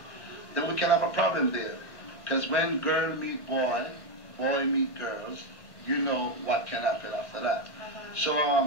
then we can have a problem there. Because when girl meet boy, boy meet girls, you know what can happen after that.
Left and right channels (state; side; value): late; right; 1.4 ms